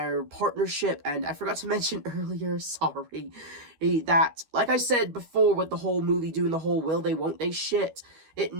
partnership, and I forgot to mention earlier, sorry, that, like I said before with the whole movie doing the whole will they, won't they shit,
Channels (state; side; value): late; left; 12 ms